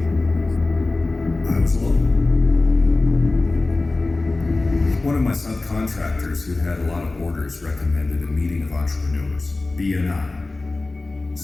I was alone. One of my subcontractors who had a lot of orders recommended a meeting of entrepreneurs, BNI.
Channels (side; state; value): right; quieter; 3.2 dB